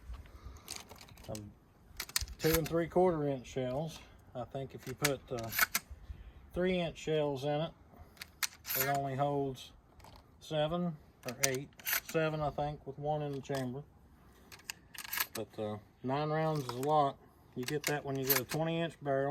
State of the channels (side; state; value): both; identical; correlation 1.00